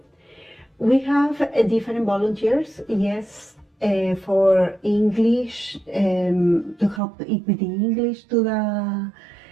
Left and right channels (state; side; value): drops out; left; at 7.0 s